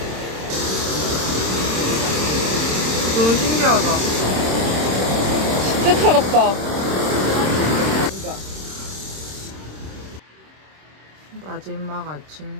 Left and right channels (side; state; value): left; late; 26 ms